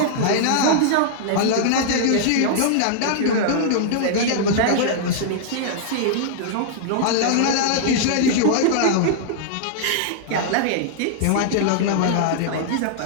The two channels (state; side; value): different; both; correlation -0.01